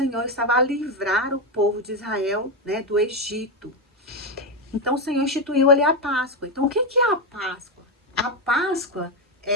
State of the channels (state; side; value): normal; both; correlation 0.09